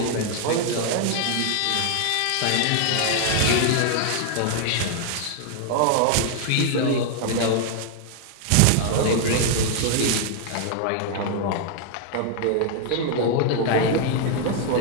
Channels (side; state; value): both; different; correlation 0.00